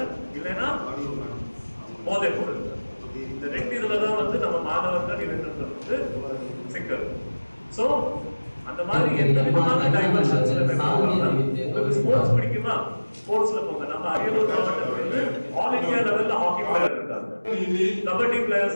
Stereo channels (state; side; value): inverted; both; correlation -1.00